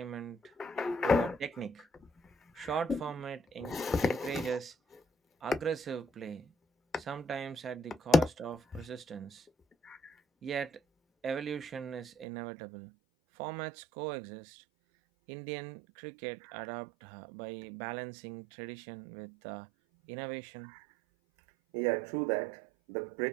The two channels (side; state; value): left; drops out; at 12.2 s